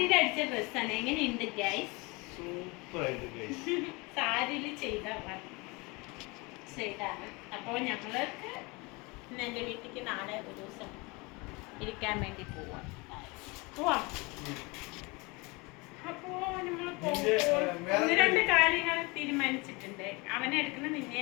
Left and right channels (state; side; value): quieter; right; 26.5 dB